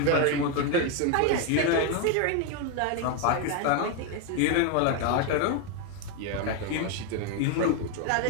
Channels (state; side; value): different; both; correlation 0.02